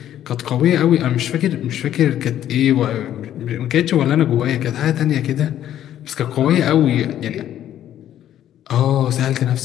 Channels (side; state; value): right; quieter; 11.5 dB